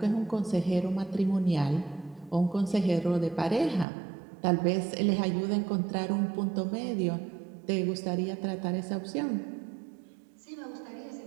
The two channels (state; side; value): drops out; left; at 3.9 s